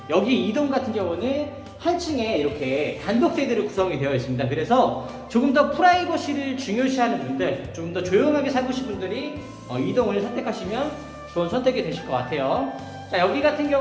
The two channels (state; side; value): identical; both; correlation 1.00